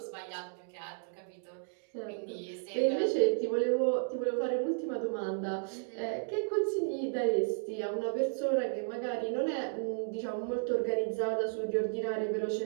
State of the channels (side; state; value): left; silent; digital silence